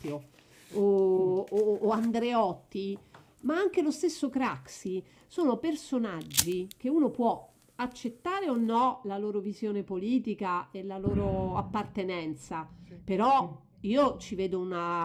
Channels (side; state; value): both; identical; correlation 1.00